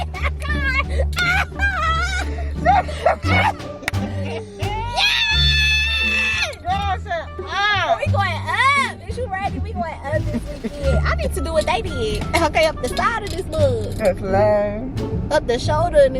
We going up. Is you ready? We going up this weekend. I need to do what they did. Okay, up the side of this mug. That's lame. Up the shoulder in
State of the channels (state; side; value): identical; both; correlation 1.00